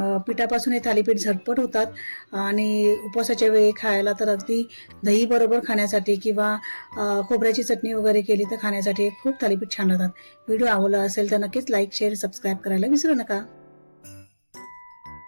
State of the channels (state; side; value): inverted; both; correlation -1.00